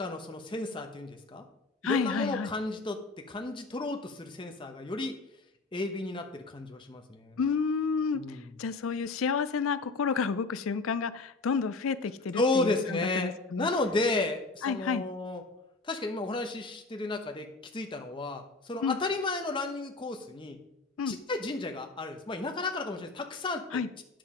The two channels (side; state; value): right; quieter; 3.5 dB